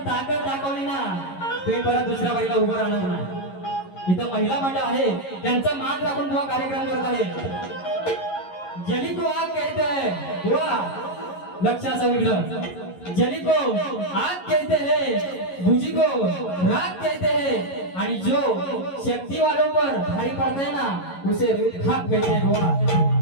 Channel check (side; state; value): right; late; 11 ms